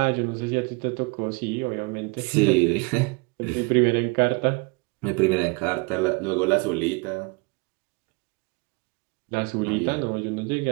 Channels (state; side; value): quieter; left; 28.5 dB